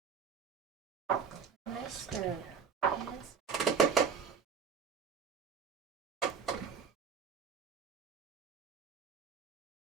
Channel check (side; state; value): left; quieter; 6.3 dB